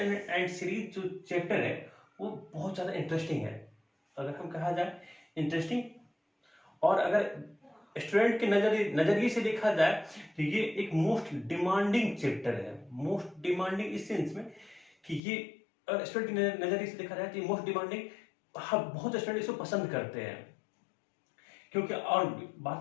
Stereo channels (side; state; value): right; drops out; at 15.2 s